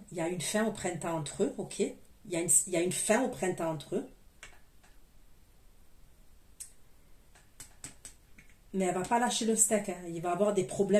Il y a une fin au printemps entre eux, ok. Il y a une fin au printemps entre eux. Mais elle ne va pas lâcher le steak. Hein. Il va avoir des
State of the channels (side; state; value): both; identical; correlation 1.00